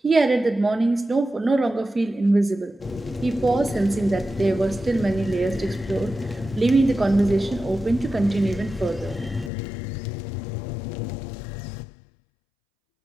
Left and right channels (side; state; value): right; drops out; at 9.5 s